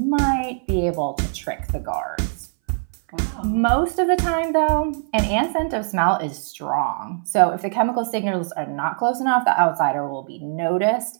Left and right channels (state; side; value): silent; left; 62 dB below the other